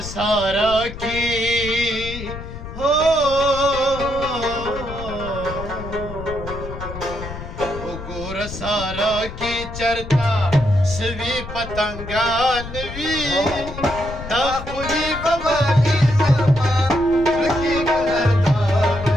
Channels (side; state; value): left; noise; rumble, 10 dB below the sound